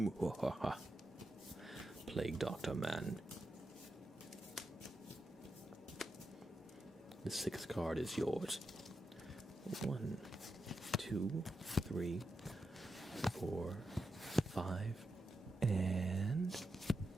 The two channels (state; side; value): normal; both; correlation 0.87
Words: Plague Doctor Man. The 6th card is yours. 1, 2, 3, 4, 5, and